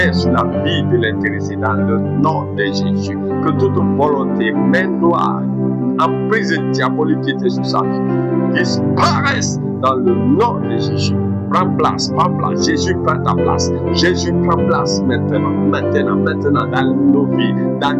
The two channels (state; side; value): identical; both; correlation 1.00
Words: sur la vie de l'intéressé dans le nom de Jésus. Que toute volonté, main noire, emprise diabolique qui était sur sa vie, disparaisse dans le nom de Jésus. Prends place, Jésus prend ta place. Jésus prend place maintenant, dans nos vies, dans